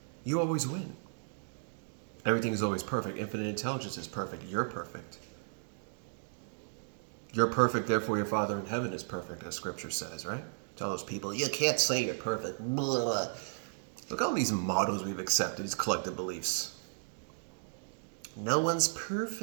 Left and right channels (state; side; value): silent; left; digital silence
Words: You always win. Everything is always perfect. Infinite intelligence is perfect. You're perfect. You're perfect, therefore your Father in heaven is perfect, as Scripture says, right? To all those people, you can't say you're perfect. Blah. Look at all these mottos we've accepted, these collective beliefs. No one's